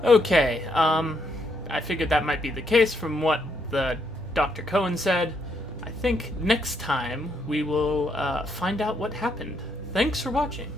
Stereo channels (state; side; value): noise; right; hum, 18 dB below the sound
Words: Okay, I figured that might be the case from what the Dr. Cohen said. I think next time we will find out what happened. Thanks for watching.